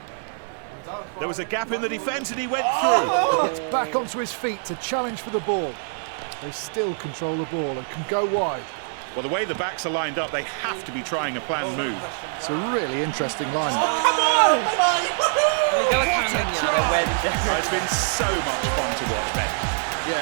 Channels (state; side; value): silent; left; digital silence